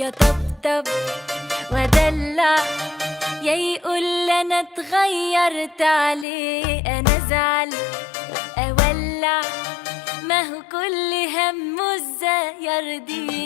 طبطب ودلع، يا يقول انا اتغيرت عليه، انا ازعل اولع، ما هو كل همه ازاي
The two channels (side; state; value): right; drops out; at 6.2 s